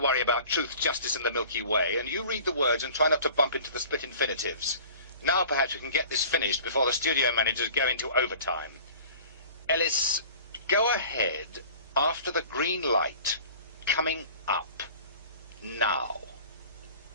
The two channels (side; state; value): both; inverted; correlation -0.45